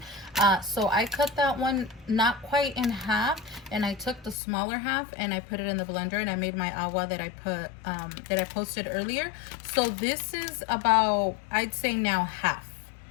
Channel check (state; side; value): drops out; right; at 4.4 s